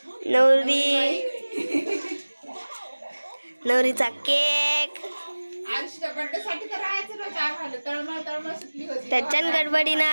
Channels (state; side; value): inverted; both; correlation -1.00